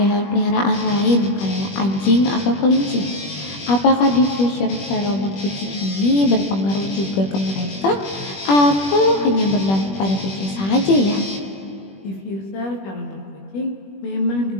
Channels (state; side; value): late; right; 21 ms